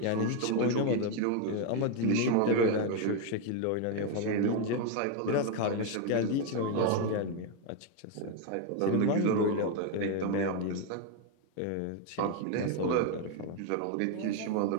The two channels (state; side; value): different; both; correlation 0.01